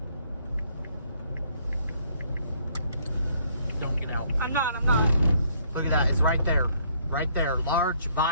Don't get out. I'm not. Look at that. It's right there. Right there. Large,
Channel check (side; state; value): both; inverted; correlation -0.66